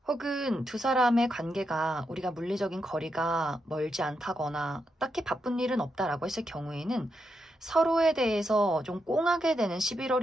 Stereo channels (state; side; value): normal; both; correlation 0.84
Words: 혹은 두 사람의 관계가 우리가 물리적인 거리가 멀지 않다거나 딱히 바쁜 일은 없다라고 했을 경우에는 서로에 대해서 좀 꽁하게 되는